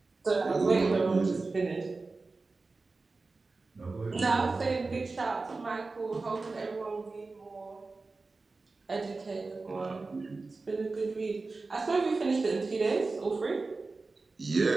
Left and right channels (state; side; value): quieter; left; 3.8 dB